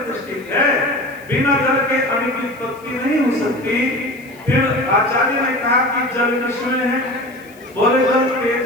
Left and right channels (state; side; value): noise; left; hiss, 26 dB below the sound